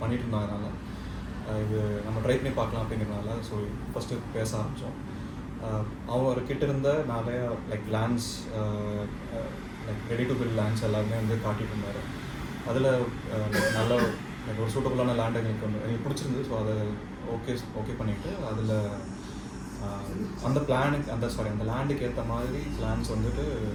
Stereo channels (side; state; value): both; identical; correlation 1.00